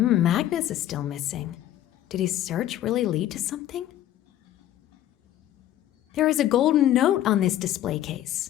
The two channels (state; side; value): quieter; right; 12.5 dB